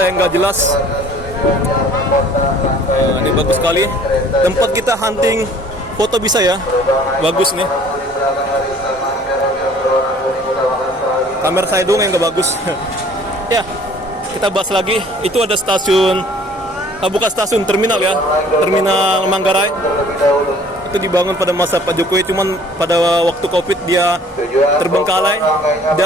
nggak jelas. Ini bagus sekali. Tempat kita hunting foto bisa ya. Bagus nih. Kamera saya dong yang nggak bagus. Ya, kita bahas lagi. Itu ada stasiun, bukan stasiun, terminal ya, terminal Manggarai. Itu dibangun pada masa Pak Jokowi, cuman pada waktu Covid dia terbengkalai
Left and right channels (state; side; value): normal; both; correlation 0.53